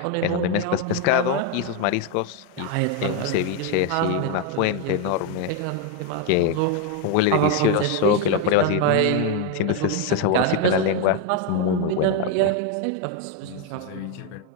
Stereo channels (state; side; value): different; both; correlation 0.02